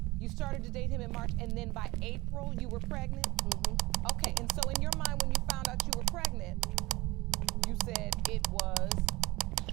you started to date him in March, and then by April you were pregnant? Mm-hmm. Okay. And so in your mind, when you found out you were pregnant, you said it was.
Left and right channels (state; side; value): quieter; left; 21.0 dB